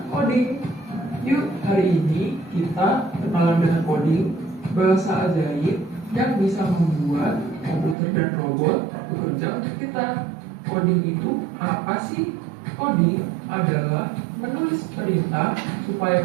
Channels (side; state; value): left; drops out; at 8.0 s